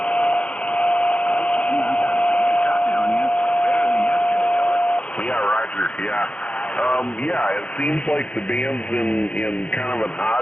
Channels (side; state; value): right; late; 0.061 ms